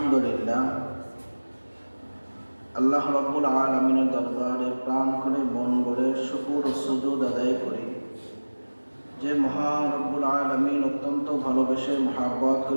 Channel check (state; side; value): inverted; both; correlation -1.00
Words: আল্লাহ রাব্বুল আলামিনের দরবারে প্রাণ করে মন ভরে শুকর ও সুজুদ আদায় করি যে মহান রব্বুল আলামিন অত্যন্ত ভালোবেসে মহাব্বত